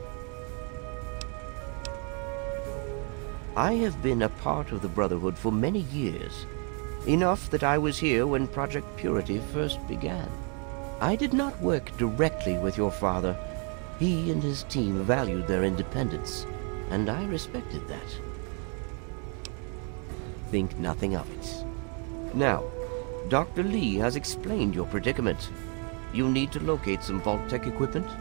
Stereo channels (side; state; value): left; quieter; 38.5 dB